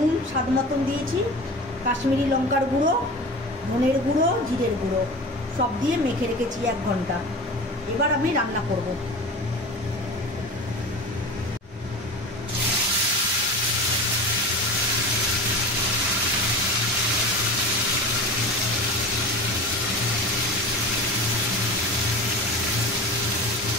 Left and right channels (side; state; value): both; normal; correlation 0.33